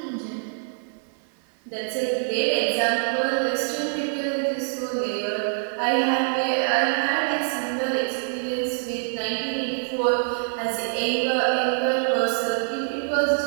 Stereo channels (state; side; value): silent; left; 58 dB below the other